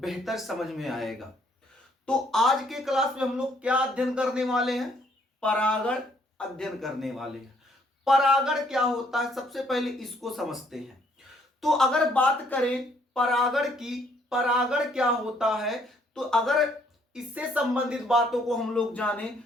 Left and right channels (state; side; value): normal; both; correlation 0.66